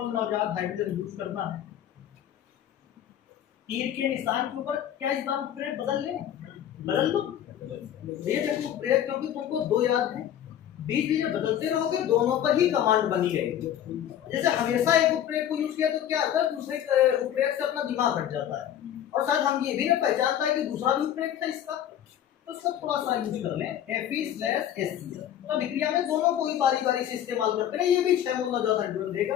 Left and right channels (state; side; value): quieter; right; 10.6 dB